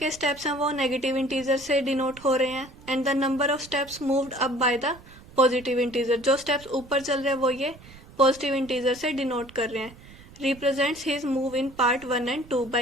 स्टेप्स हैं वो नेगेटिव इंटीजर से डिनोट हो रहे हैं, and the number of steps moved up by the positive integer. जो स्टेप्स ऊपर चल रहे हैं वो ये पॉजिटिव इंटीजर से डिनोट कर रहे हैं। Represents his move in part 1 and 2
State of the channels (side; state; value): right; noise; rumble, 21 dB below the sound